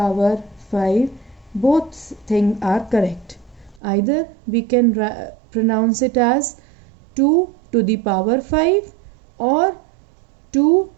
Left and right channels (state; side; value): drops out; left; at 3.8 s